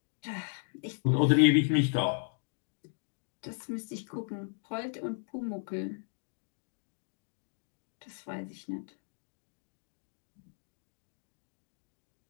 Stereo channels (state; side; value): silent; right; 54 dB below the other